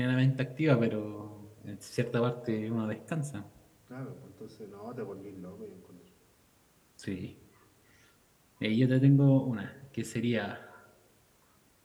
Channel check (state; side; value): identical; both; correlation 1.00